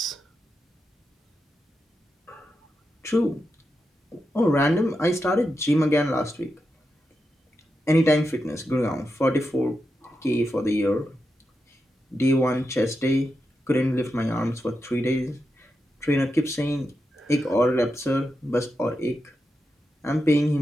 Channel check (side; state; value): both; normal; correlation 0.87